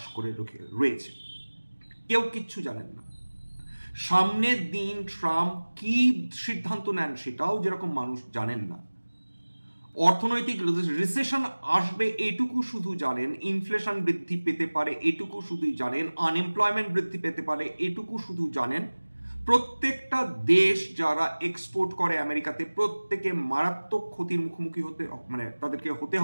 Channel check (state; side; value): inverted; both; correlation -1.00